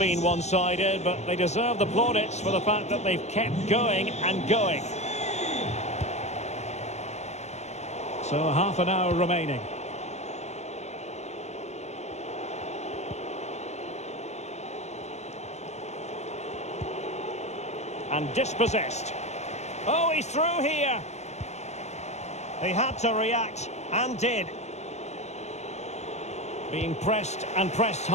one-sided, but they deserve the plaudits for the fact that they've kept going and going. So half an hour remaining. And dispossessed. Oh, he's through here. He had to react, and did. Being pressed and pressed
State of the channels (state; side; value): late; right; 0.32 ms